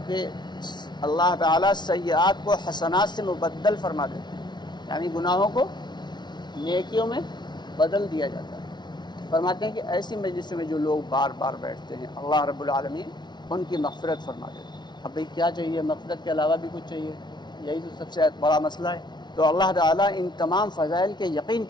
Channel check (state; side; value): late; right; 0.21 ms